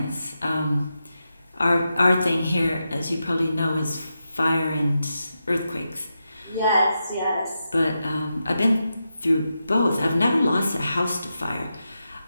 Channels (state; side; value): inverted; both; correlation -0.88